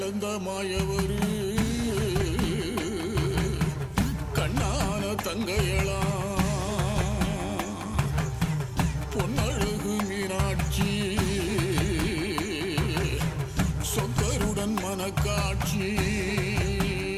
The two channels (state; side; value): identical; both; correlation 1.00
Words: மாயவரு கண்ணான தங்கையளா பொன்னழகு மீனாட்சி சொக்கருடன் மனக்காட்சி